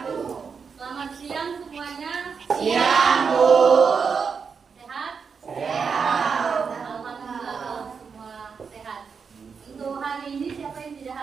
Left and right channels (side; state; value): left; quieter; 5.8 dB